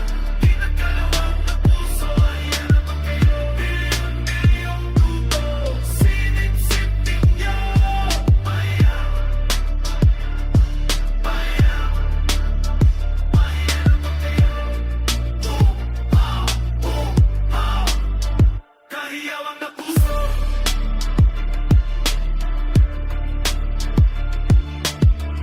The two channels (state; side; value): identical; both; correlation 1.00